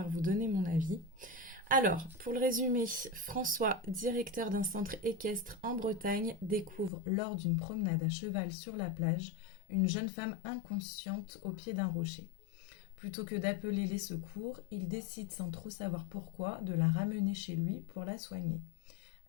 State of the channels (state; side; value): drops out; right; at 6.9 s